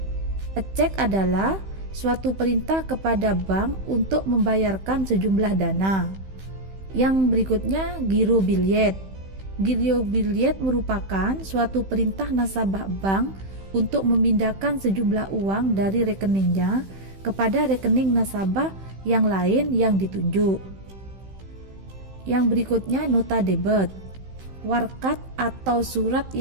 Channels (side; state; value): left; late; 15 ms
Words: Cek adalah suatu perintah kepada bank untuk membayarkan sejumlah dana. Yang berikutnya giro billet. Giro billet merupakan suatu perintah nasabah bank untuk memindahkan sejumlah uang dari rekeningnya kepada rekening nasabah yang lain yang ditunjuk. Yang berikutnya nota debit. Warkat atau surat